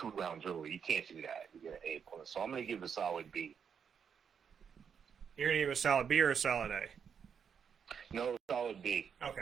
rounds early. You can't do that. You get an A plus. So I'm going to give a solid B. You're going to give a solid B or a solid A? No, solid B.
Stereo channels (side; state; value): left; quieter; 7.1 dB